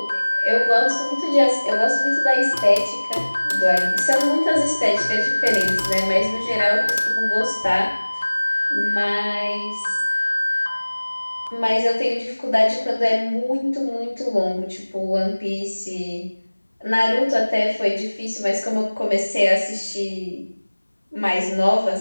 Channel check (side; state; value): both; inverted; correlation -1.00